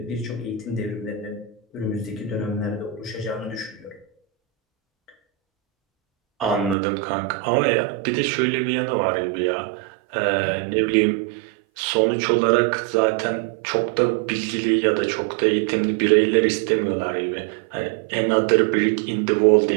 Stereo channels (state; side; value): drops out; left; at 6.8 s